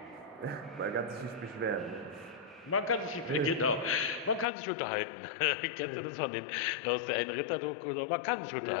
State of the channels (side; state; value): right; drops out; at 4.5 s